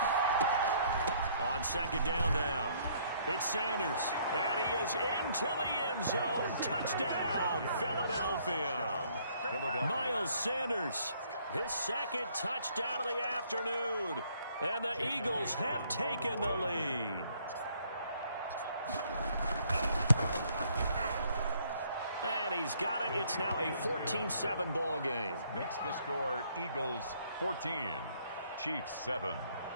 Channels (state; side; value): inverted; both; correlation -0.64